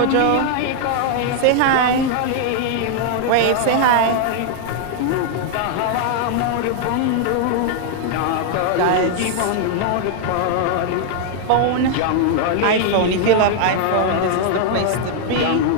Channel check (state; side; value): different; both; correlation 0.00